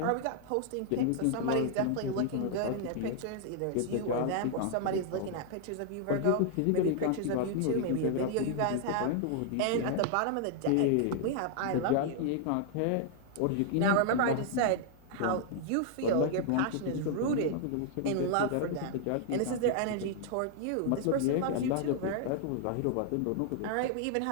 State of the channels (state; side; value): different; both; correlation 0.00